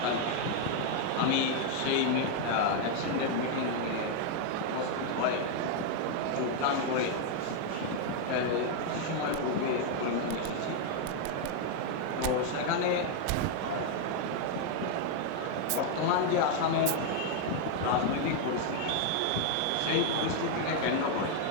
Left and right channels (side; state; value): both; different; correlation 0.00